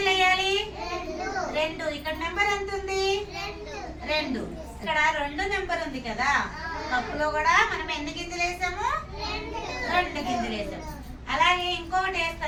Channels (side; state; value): both; identical; correlation 1.00